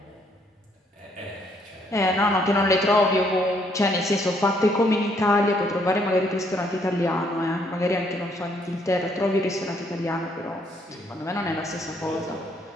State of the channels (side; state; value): both; normal; correlation 0.69